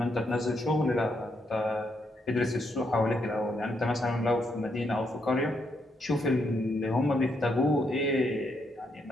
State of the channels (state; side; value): normal; both; correlation 0.77